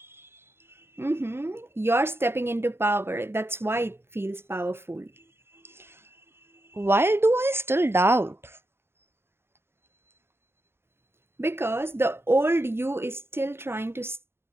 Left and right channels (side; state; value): left; late; 0.11 ms